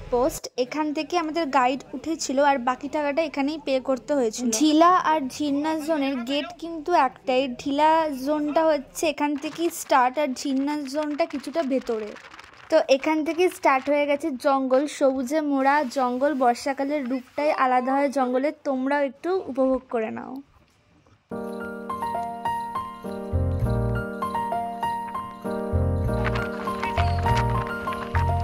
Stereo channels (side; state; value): both; identical; correlation 1.00